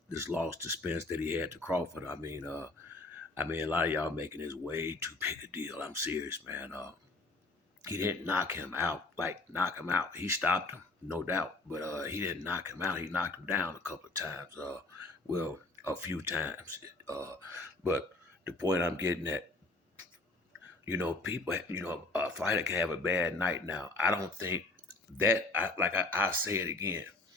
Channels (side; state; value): right; quieter; 3.1 dB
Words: loss to Spence that he had to Crawford. A lot of y'all making this way too big a deal. I'm serious, man. He didn't knock him out, like knock him out. He stopped him, no doubt, but he didn't knock him out. He knocked him down a couple of times. Well, a few times. But the point I'm getting at, people, a fighter can have a bad night now. I don't think I say it again,